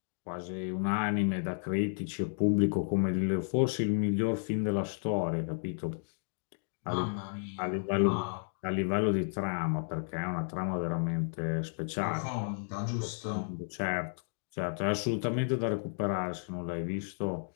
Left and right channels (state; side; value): silent; right; digital silence